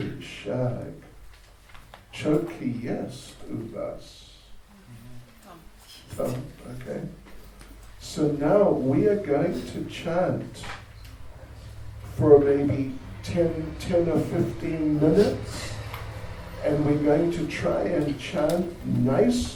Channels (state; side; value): identical; both; correlation 1.00